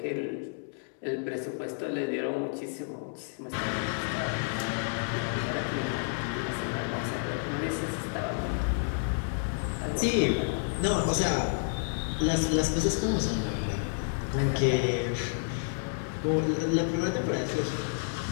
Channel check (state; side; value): silent; right; digital silence